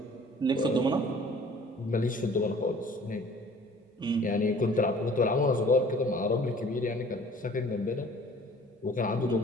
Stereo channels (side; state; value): both; normal; correlation 0.51